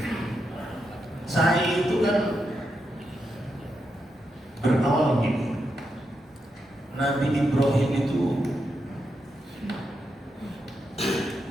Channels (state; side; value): normal; both; correlation 0.84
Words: Saya itu kan berawal begini. Nabi Ibrahim itu